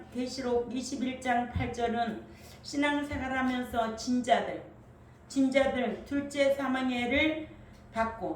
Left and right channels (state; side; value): identical; both; correlation 1.00